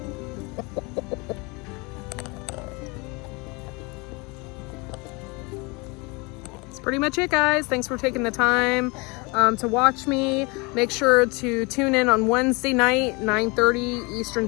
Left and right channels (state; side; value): quieter; right; 27.7 dB